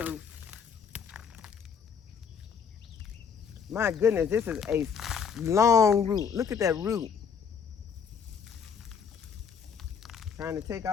My goodness, this is a long root. Look at that root. Trying to take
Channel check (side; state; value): right; quieter; 6.6 dB